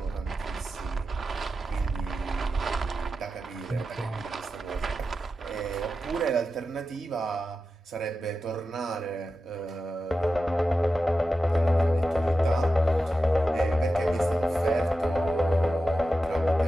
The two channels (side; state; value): both; normal; correlation 0.91